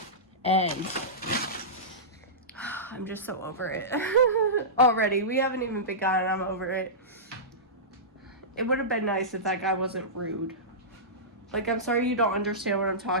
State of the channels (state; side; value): normal; both; correlation -0.18